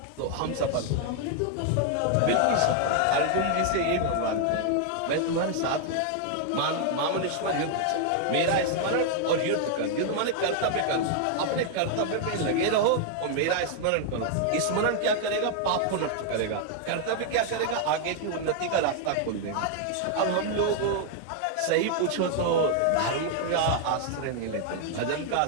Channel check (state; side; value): different; both; correlation 0.00